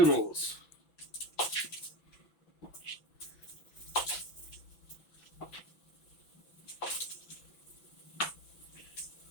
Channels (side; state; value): right; late; 6.0 ms